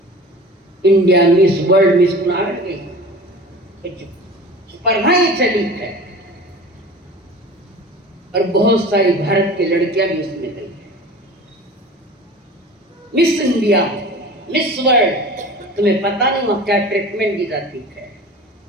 इंडिया मिस वर्ल्ड मिस गई, स्पर्धाएं चली है और बहुत सारी भारत की लड़कियां भी उसमें गई है। मिस इंडिया, मिस वर्ल्ड, तुम्हें पता नहीं वहां क्या ट्रीटमेंट दी जाती है।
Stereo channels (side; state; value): both; normal; correlation 0.38